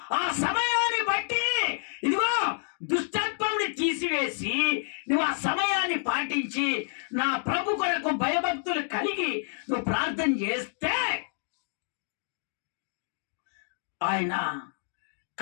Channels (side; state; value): right; silent; digital silence